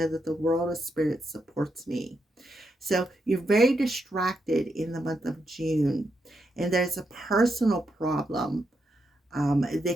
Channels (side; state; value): both; normal; correlation 0.82